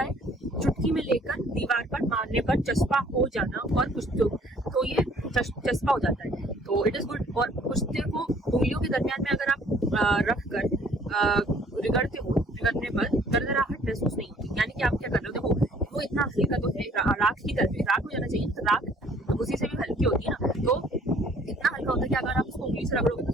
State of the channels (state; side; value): normal; both; correlation 0.58